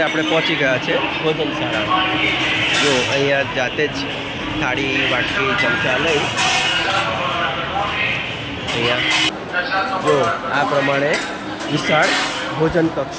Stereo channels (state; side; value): identical; both; correlation 1.00